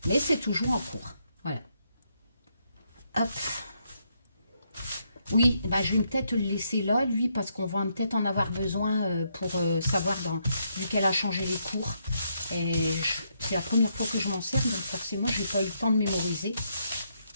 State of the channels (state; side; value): inverted; both; correlation -0.76